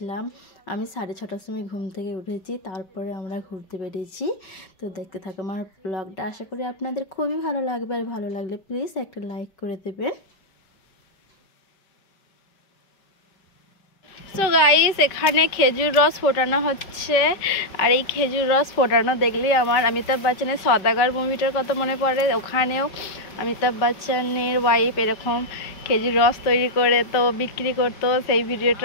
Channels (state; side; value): late; right; 5.2 ms